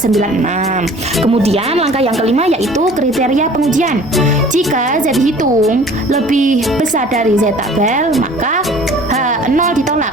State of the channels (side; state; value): both; normal; correlation 0.48